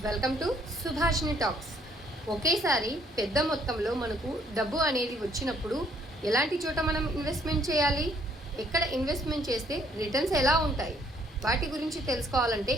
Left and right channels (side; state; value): both; normal; correlation 0.66